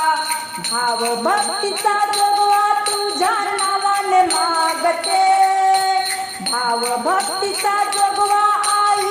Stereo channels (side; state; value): both; identical; correlation 1.00